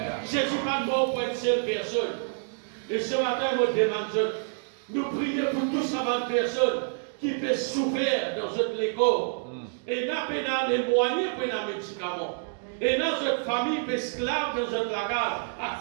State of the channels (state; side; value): silent; left; digital silence